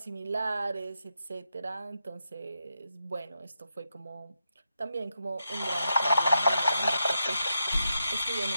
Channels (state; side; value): inverted; both; correlation -0.85